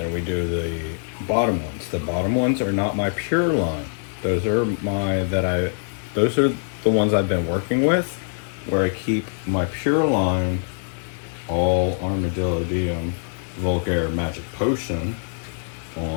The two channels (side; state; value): right; silent; digital silence